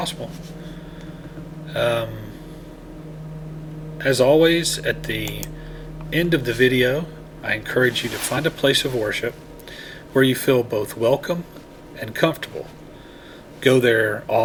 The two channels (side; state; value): both; identical; correlation 1.00